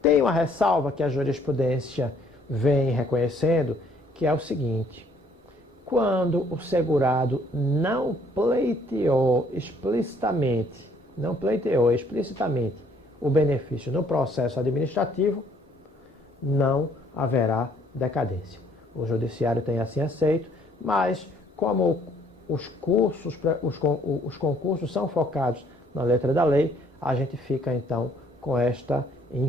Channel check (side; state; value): both; normal; correlation 0.63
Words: uma ressalva que a jurisprudência vem reconhecendo, que é o seguinte: quando o segurado não pleiteou explicitamente o benefício no processo administrativo, não haverá decadência. O judiciário tem assim aceito, mas como os concursos são focados na letra da lei, a gente fica então com esta